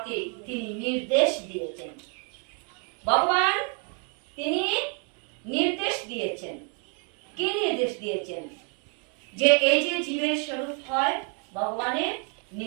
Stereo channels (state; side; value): quieter; left; 39.0 dB